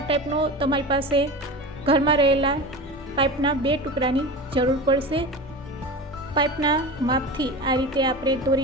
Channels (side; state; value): both; normal; correlation 0.29